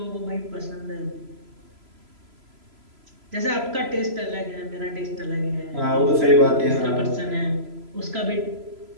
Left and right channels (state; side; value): late; left; 3.0 ms